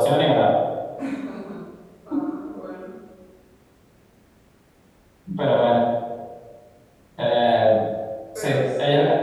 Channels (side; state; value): both; identical; correlation 1.00